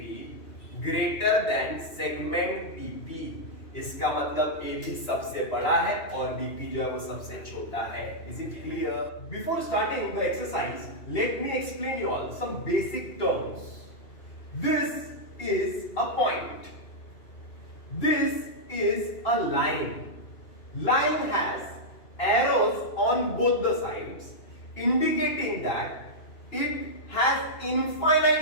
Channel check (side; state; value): right; late; 2.9 ms